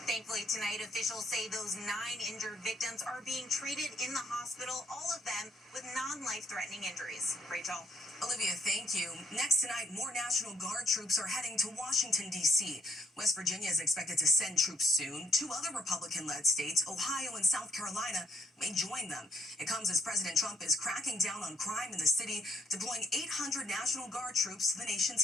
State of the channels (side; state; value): both; normal; correlation 0.67